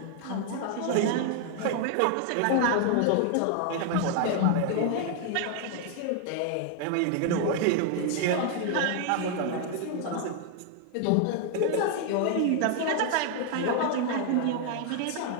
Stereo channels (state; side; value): different; both; correlation 0.00